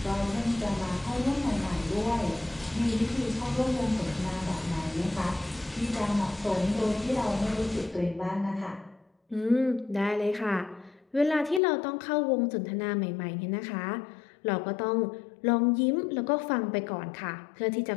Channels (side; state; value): right; drops out; at 11.6 s